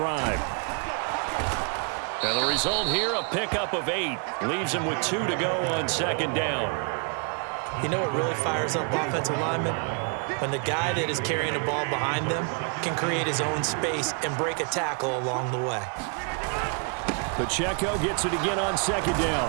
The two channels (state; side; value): quieter; left; 38.0 dB